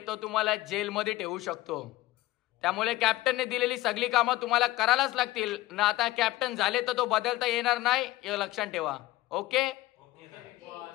तो तुम्हाला जेलमध्ये ठेवू शकतो. त्यामुळे कॅप्टनने दिलेली सगळी कामं तुम्हाला करायलाच लागतील ना. आता कॅप्टन झाले तर तो बदलता येणार नाही, हे लक्षात ठेवा. ओके.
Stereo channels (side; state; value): right; quieter; 17.5 dB